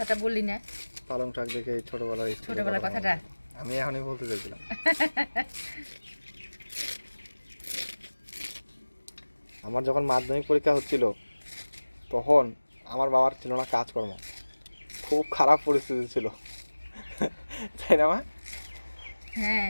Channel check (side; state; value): both; inverted; correlation -1.00